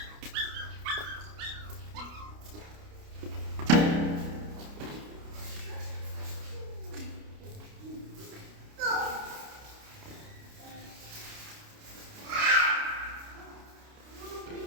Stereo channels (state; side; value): late; left; 29 ms